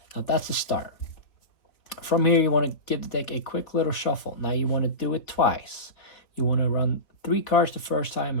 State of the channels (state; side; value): late; right; 3.5 ms